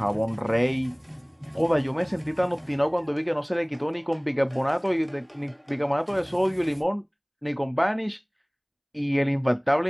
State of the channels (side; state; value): both; identical; correlation 1.00